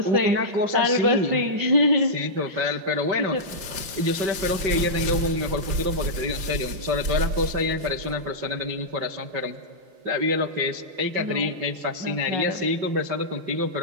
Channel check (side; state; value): left; late; 5.8 ms